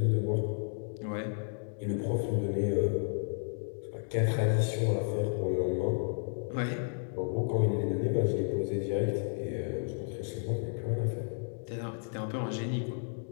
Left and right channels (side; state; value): right; silent; digital silence